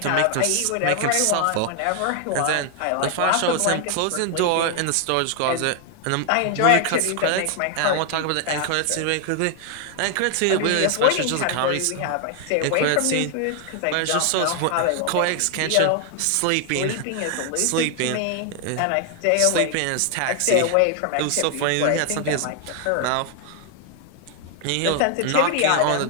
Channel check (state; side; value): different; both; correlation 0.00